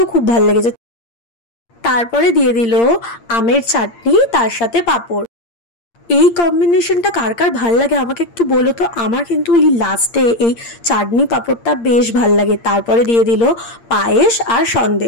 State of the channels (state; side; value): late; right; 8.7 ms